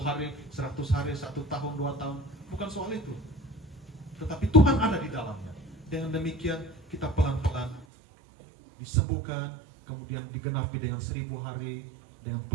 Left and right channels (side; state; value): left; drops out; at 7.9 s